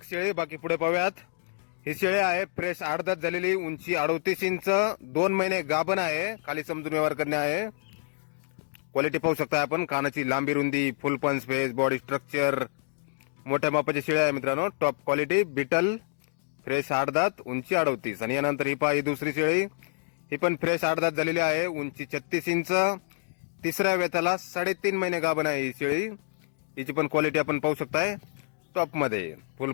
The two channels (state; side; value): silent; right; digital silence